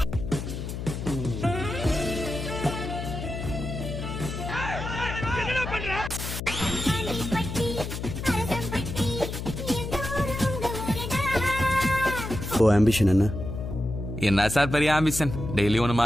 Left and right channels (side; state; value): left; noise; hum, 6 dB below the sound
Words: ஆம்பிஷன் என்ன? என்ன சார் பெரிய ஆம்பிஷன்? டெய்லி ஒன்று